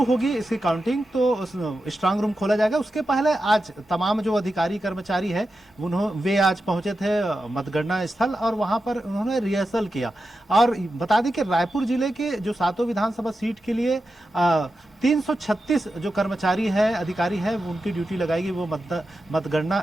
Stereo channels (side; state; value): both; normal; correlation 0.90